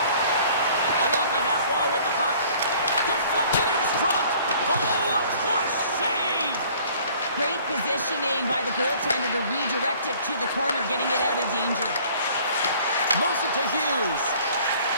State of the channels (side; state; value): both; inverted; correlation -0.54